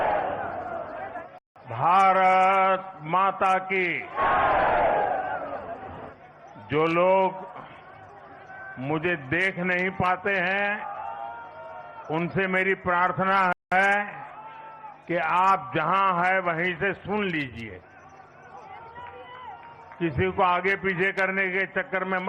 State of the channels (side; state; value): both; identical; correlation 1.00